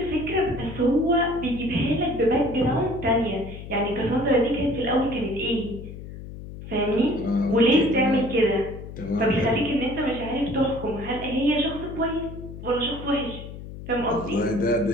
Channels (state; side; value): noise; left; hum, 12 dB below the sound